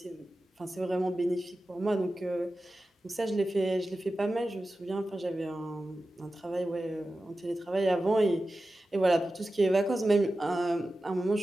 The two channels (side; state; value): both; normal; correlation 0.94